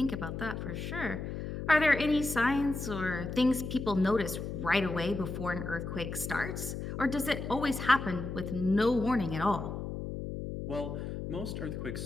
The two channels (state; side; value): noise; left; hum, 6 dB below the sound